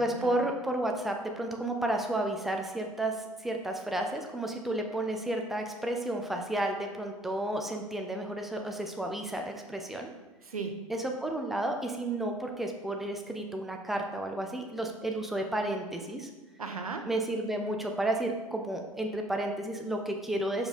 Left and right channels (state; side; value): normal; both; correlation 0.63